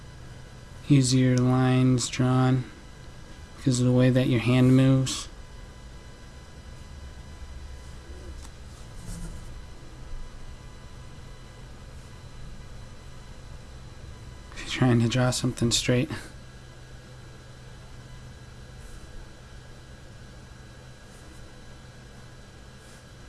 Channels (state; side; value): identical; both; correlation 1.00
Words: easier lines drawn because of the way that your hand moves. If you're trying to draw something straight.